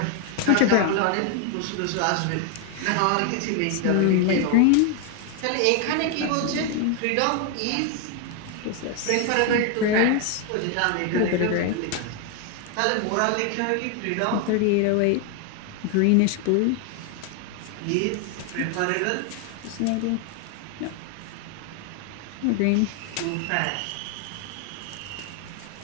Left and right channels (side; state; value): both; different; correlation 0.01